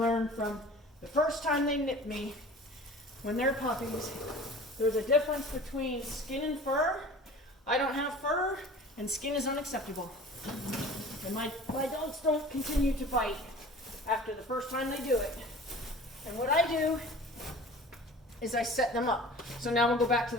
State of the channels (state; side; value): normal; both; correlation 0.42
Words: from the first time they nip me when they're puppies. There's a difference between skin and fur. I don't have fur, and skin is unacceptable. And my dogs don't continue to bite after the first time they do it. And what I do is I set them up. So now we'll go back to